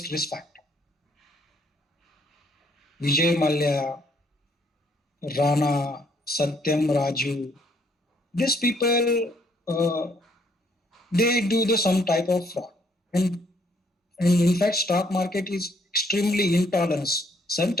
risk factor. Vijay Mallya, Rana, Satyam Raju, these people, they do some type of fraud. And in fact, stock market is extremely intolerance.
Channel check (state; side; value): normal; both; correlation 0.67